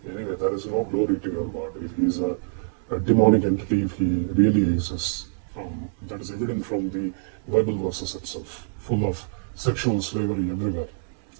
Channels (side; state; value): left; silent; digital silence